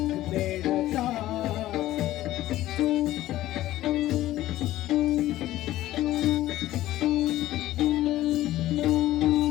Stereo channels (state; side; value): quieter; right; 14.9 dB